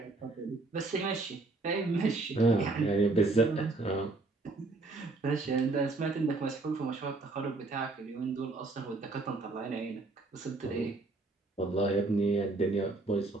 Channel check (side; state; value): left; quieter; 3.4 dB